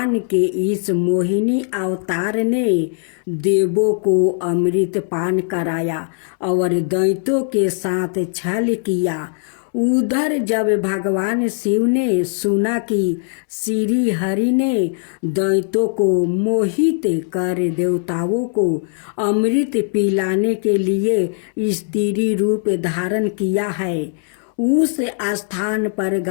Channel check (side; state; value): right; silent; 64 dB below the other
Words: के इस मोहिनी अवतार ने देवों को अमृत पान कराया और दैत्यों के साथ छल किया। उधर जब भगवान शिव ने सुना कि श्री हरि ने दैत्यों को मोहित कर देवताओं को अमृत पिलाने के लिए स्त्री रूप धारण किया है, उस स्थान पर